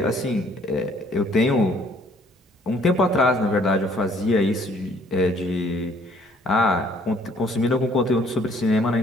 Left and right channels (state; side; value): normal; both; correlation 0.61